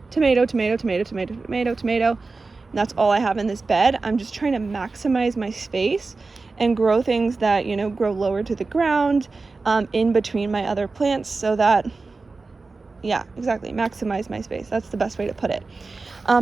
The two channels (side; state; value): left; quieter; 3.9 dB